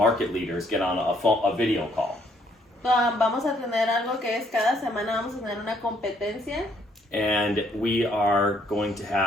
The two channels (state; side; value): normal; both; correlation 0.68